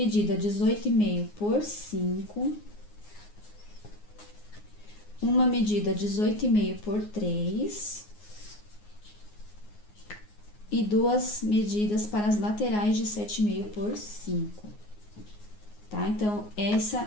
18,5 por 5, uma medida 18,5 por 3 e duas medidas para as laterais de 7,5 por 5, tá? Então,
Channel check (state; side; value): late; right; 9.6 ms